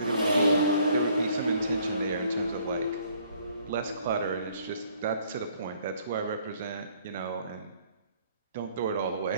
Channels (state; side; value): inverted; both; correlation -0.62